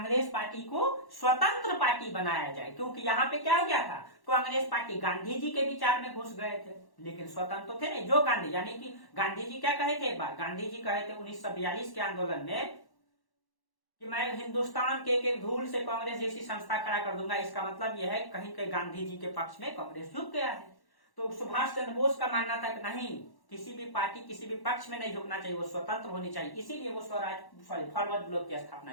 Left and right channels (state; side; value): late; right; 1.1 ms